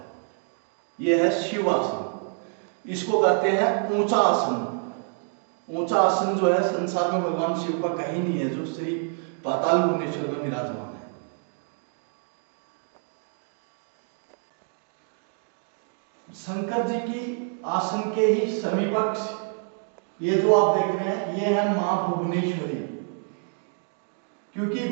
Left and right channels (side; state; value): left; silent; 56 dB below the other